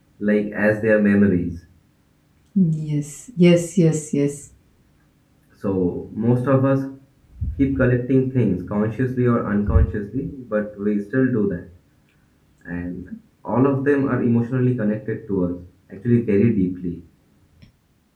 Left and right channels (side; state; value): both; identical; correlation 1.00